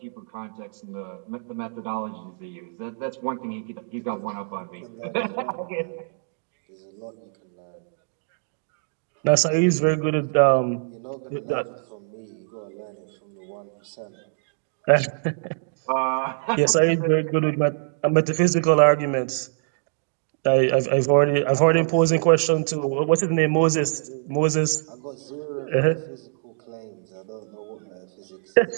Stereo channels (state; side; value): silent; left; digital silence